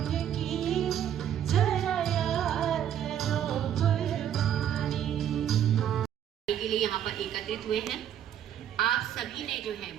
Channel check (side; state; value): left; quieter; 10.0 dB